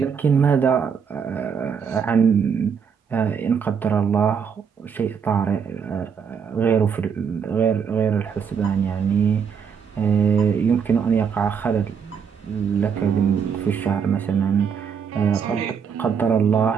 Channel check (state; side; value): quieter; left; 6.8 dB